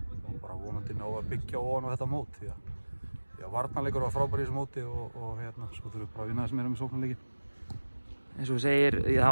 bara vonandi ná að byggja ofan á þetta mót því að varnarleikur var frábær í þessu móti og hérna, svo þurfum við bara að vinna þess meira með sóknarleiki. Eins og þú segir,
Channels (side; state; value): both; inverted; correlation -1.00